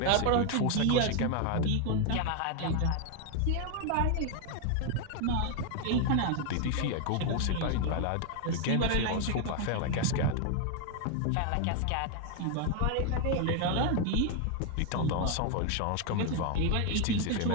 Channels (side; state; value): both; different; correlation 0.00